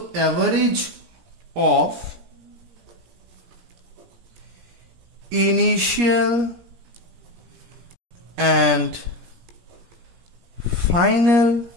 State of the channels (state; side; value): late; left; 17 ms